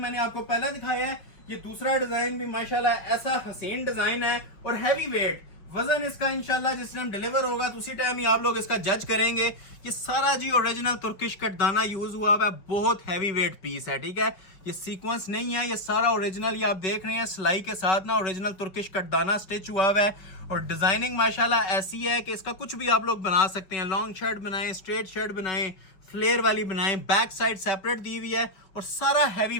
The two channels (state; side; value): late; right; 5.5 ms